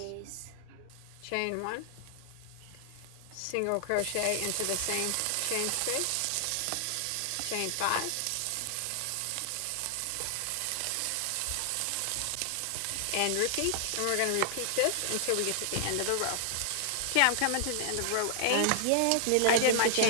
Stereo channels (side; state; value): both; different; correlation -0.01